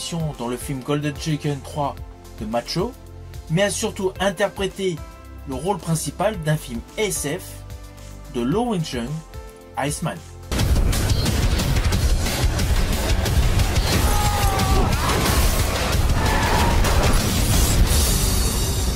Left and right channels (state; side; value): identical; both; correlation 1.00